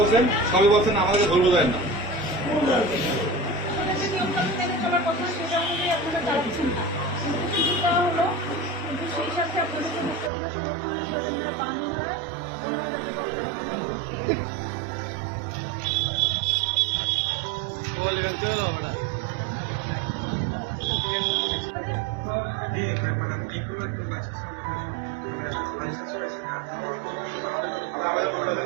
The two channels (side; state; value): left; drops out; at 10.3 s